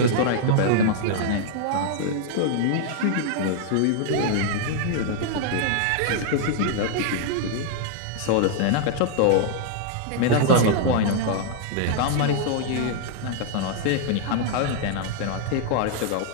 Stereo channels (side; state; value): both; different; correlation -0.01